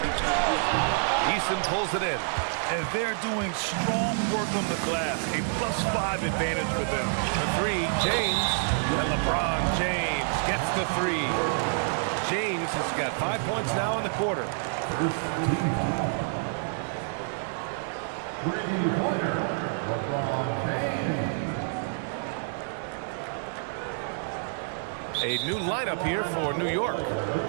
Eason pulls it in. And they're doing strong work on the glass. A +5 advantage for them. The 3, James. And LeBron James gets the 3. James has got 5 points now in the quarter. First team foul. 3-pointer, LeBron James. A new lineup here for New York.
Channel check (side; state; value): left; silent; digital silence